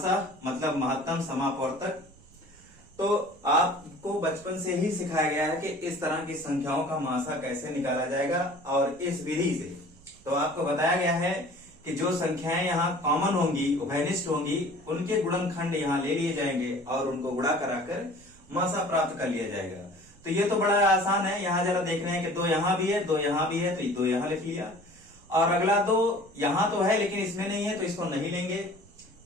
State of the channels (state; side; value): noise; right; rumble, 26 dB below the sound